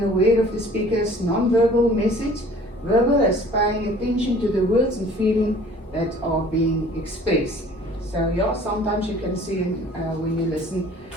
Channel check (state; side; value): normal; both; correlation 0.50